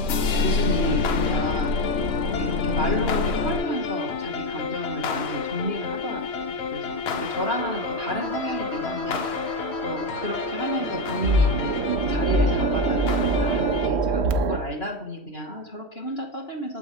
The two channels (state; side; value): late; right; 3.1 ms